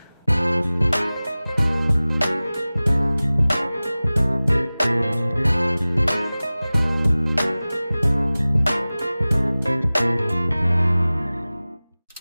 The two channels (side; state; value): both; inverted; correlation -0.98